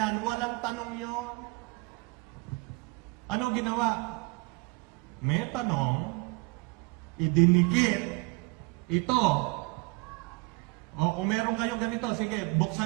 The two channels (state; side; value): quieter; left; 27.1 dB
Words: walang tanong yon. Ano ginawa? May tanong, idinikit, ito. O kung meron kayong ganito, sige,